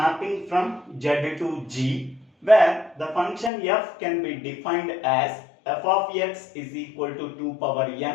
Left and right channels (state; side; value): drops out; right; at 3.5 s